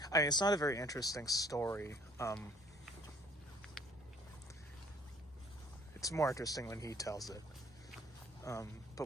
interesting story. It's more interesting when he tells it.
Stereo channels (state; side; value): normal; both; correlation 0.57